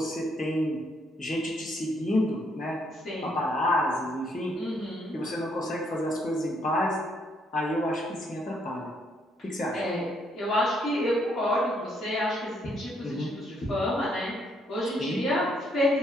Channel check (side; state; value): both; normal; correlation 0.72